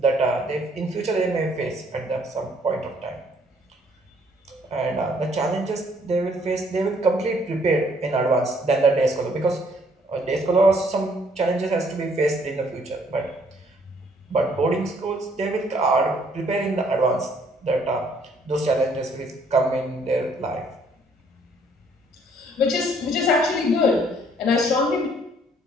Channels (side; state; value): both; normal; correlation 0.64